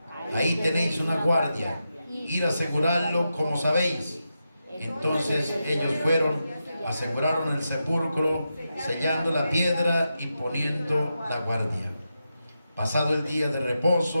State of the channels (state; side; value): inverted; both; correlation -0.88